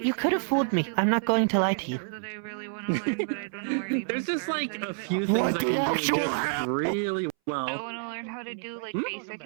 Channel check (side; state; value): left; silent; 59 dB below the other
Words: could have fooled me. I'm not going to lie to you. There's just like a few things I can do just really Well, I want to learn how to do like basic